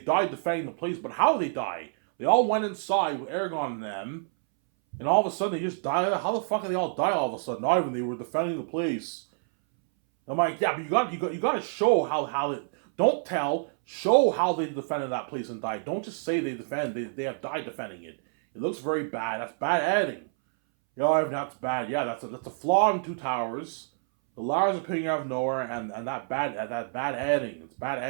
defending the place, but how did they die? They all went inside with Aragorn and them, and all of a sudden they just died. How the fuck did they all die all of a sudden? Not even they were defending the place. I'm like, yeah, but you got to show how it. Don't tell. Show how they defended that place and died. Don't just say they defend. They have died defending it. It looks very bad. That's bad editing. Yeah, that's bad. Yeah, that's a flaw in Two Towers. The Lars appearing out of nowhere, and that bad editing. It's bad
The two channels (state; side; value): silent; left; 60 dB below the other